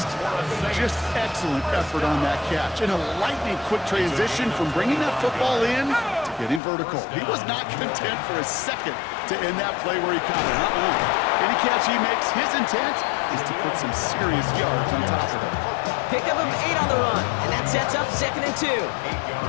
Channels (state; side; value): drops out; right; at 6.6 s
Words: Just excellent effort on that catch. And a lightning quick transition from bringing that football in to getting vertical. He was not content for a second to end that play where he caught it. Any catch he makes, his intent is to put some serious yards on top of it. Pickup of 8 on the run, and that sets up 2nd and 2.